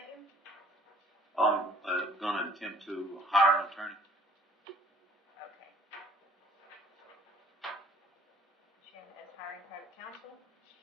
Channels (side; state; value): both; normal; correlation 0.55